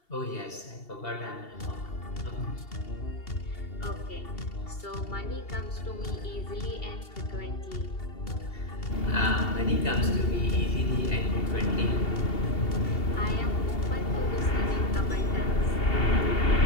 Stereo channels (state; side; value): late; right; 2.7 ms